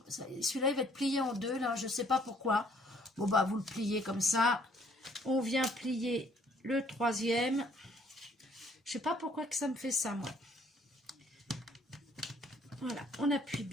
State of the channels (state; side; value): normal; both; correlation 0.62